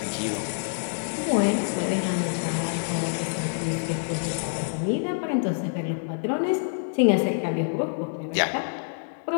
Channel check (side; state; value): right; silent; digital silence